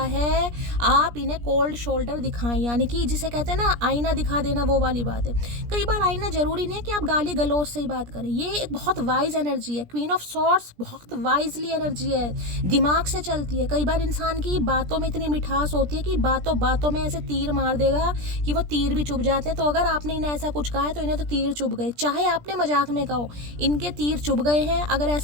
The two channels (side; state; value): left; late; 17 ms